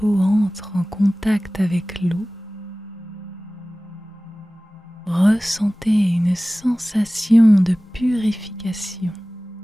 entre en contact avec l'eau, ressentez une sensation de purification.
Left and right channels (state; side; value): normal; both; correlation 0.98